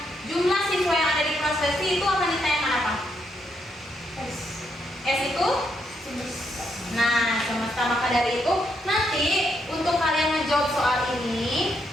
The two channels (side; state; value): both; normal; correlation 0.78